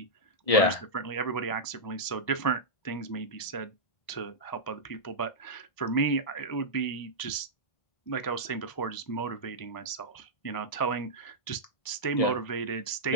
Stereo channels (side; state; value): right; late; 1.0 ms